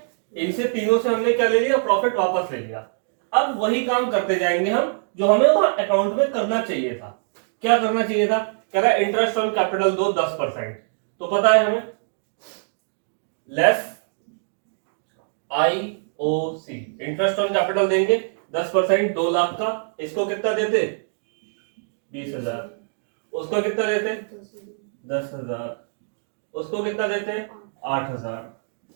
इनसे तीनों से हमने क्या ले लिया, प्रॉफिट वापस ले लिया। अब वही काम करते जाएंगे हम जो हमें वहां अकाउंट में करना चाहिए था। क्या करना चाहिए था, कह रहा है इंटरेस्ट ऑन कैपिटल दो 10%। तो पता है हमें, less IOC, interest on capital देंगे 10%, 2,00,000 का। इसको कितना देते, 20,000। उसको कितना देते, 10,000। उसको कितना देते, 8,000।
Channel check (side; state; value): left; silent; digital silence